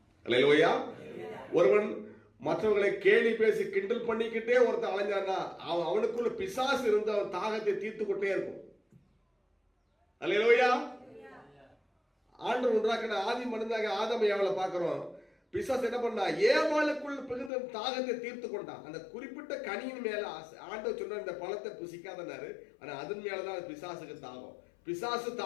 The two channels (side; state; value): right; drops out; at 17.5 s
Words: அல்லேலூயா. ஒருவன் மற்றவர்களை கேலி பேசி கிண்டல் பண்ணிக்கிட்டே ஒருத்தன் அலைஞ்சான்னா அவனுக்குள்ள பிசாசு இருந்து அவன் தாகத்தை தீர்த்து கொண்டே இருக்கும். அல்லேலூயா. ஆண்டவர் உண்டாக்கின ஆதி மனிதனாக ஆதாம் ஏவாளை பார்க்கிறோம். பிசாசு என்ன பண்ணா, ஏவாளுக்குள் பிகுந்த தாகத்தை தீர்த்து கொண்டான். அந்த குறிப்பிட்ட கனியின் மேல ஆண்டவர் சொன்ன இந்த பழத்தை புசிக்காதனாரு, ஆனா அதன் மேலதான் பிசாசுக்கு தாகம். பிசாசு